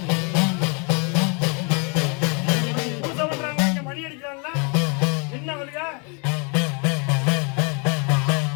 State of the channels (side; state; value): right; quieter; 35.3 dB